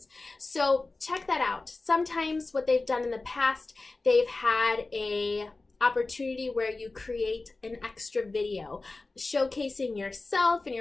So check that out. Sometimes what they've done in the past, they've had a opportunity where you create an extra video showcasing yourself and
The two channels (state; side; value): quieter; right; 3.4 dB